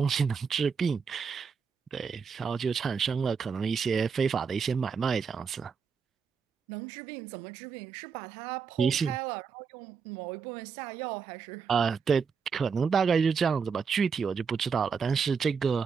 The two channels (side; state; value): left; quieter; 6.0 dB